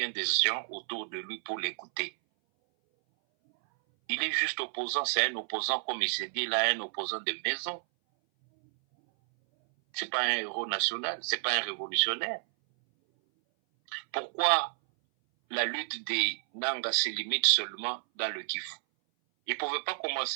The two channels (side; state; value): left; silent; 57 dB below the other